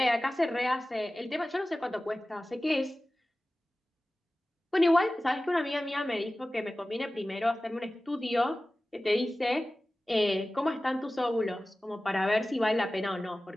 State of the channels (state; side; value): normal; both; correlation 0.97